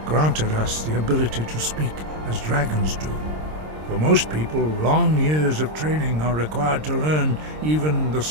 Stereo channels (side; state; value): left; late; 26 ms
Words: granted us the ability to speak as dragons do. For most people, long years of training are required to learn even the